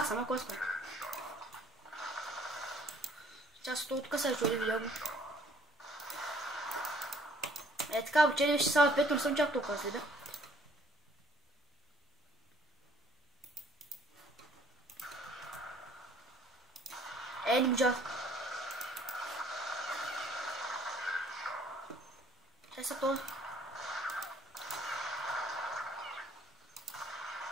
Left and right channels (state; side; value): normal; both; correlation 0.59